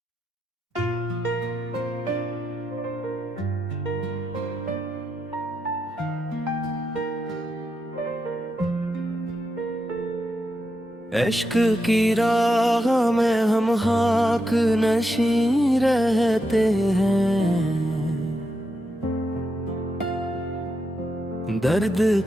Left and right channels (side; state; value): both; normal; correlation 0.84